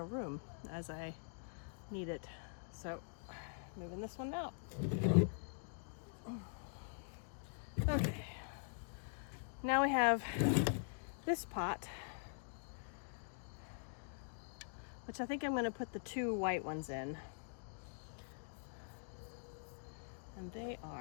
room as I need it. So moving this one out. Okay. Now we have this pot, which I think I'm going to put the 2 white ones in. And they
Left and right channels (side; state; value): right; silent; digital silence